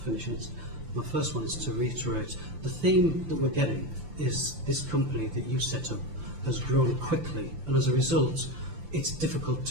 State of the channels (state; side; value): late; left; 6.8 ms